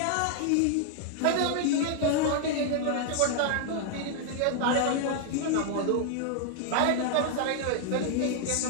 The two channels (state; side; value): different; both; correlation 0.00